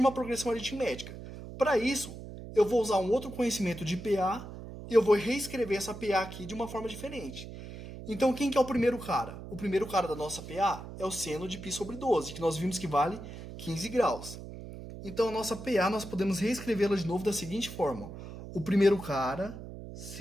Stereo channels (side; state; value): right; noise; hum, 12 dB below the sound